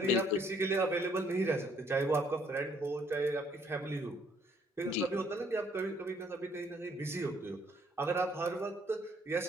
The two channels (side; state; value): both; normal; correlation 0.65